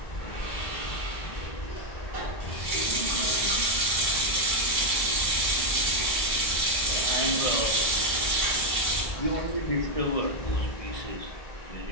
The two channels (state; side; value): late; right; 1.7 ms